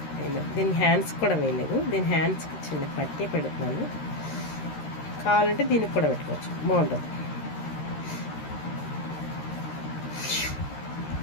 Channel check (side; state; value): right; late; 13 ms